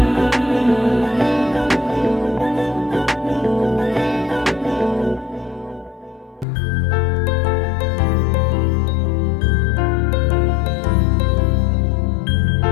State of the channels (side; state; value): right; drops out; at 6.5 s